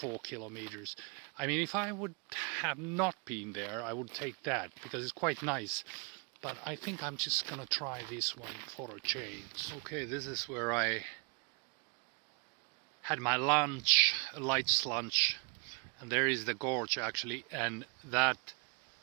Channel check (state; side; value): quieter; left; 34.1 dB